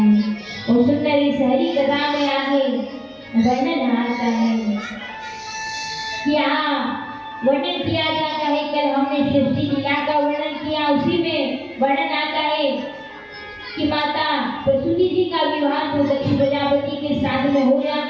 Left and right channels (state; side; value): identical; both; correlation 1.00